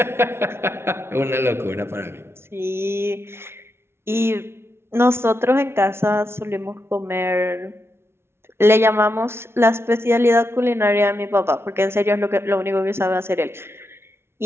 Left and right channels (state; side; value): late; left; 0.12 ms